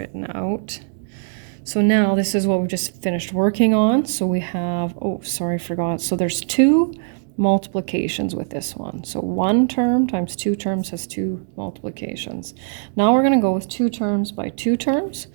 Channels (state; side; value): silent; left; digital silence